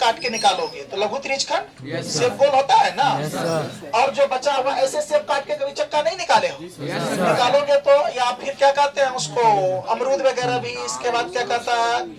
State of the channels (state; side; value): identical; both; correlation 1.00